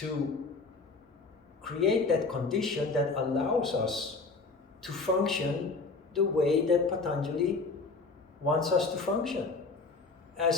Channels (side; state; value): right; quieter; 3.9 dB